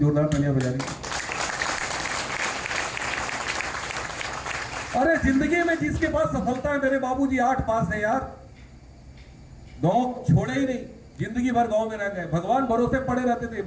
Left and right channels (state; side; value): identical; both; correlation 1.00